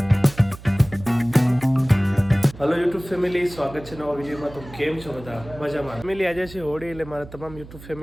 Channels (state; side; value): noise; right; hum, 17 dB below the sound